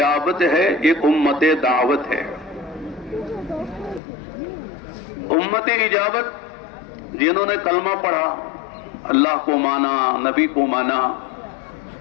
ہے، ایک امت دعوت ہے۔ امت اجابت جنہوں نے کلمہ پڑھا، اللہ کو مانا، نبی کو مانا،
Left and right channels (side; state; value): right; drops out; at 4.0 s